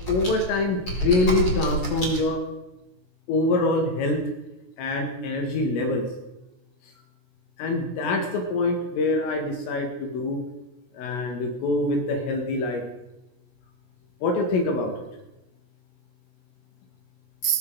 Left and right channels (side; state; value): right; late; 16 ms